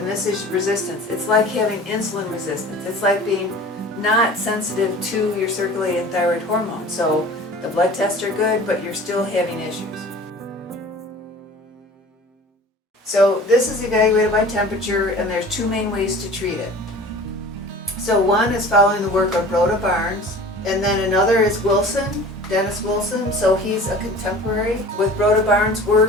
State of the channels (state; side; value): normal; both; correlation 0.42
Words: this is resistance. It's like having insulin resistance. It's like being not sensitive to your circulating thyroid hormone. So the blood tests are good, but you're still having issues. So this is evaluated by temperature, and there's two main ways to treat it. So one is following the work of Rhoda Barnes, and then another is Wilson, Dennis Wilson. So he's a contemporary. With Rhoda Barnes'